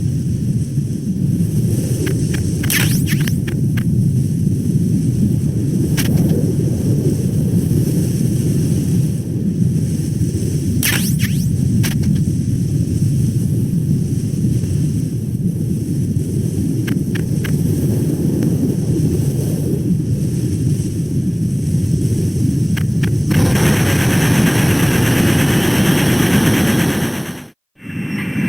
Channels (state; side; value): identical; both; correlation 1.00